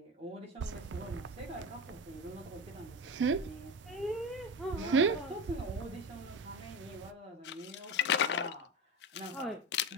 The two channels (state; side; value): normal; both; correlation 0.22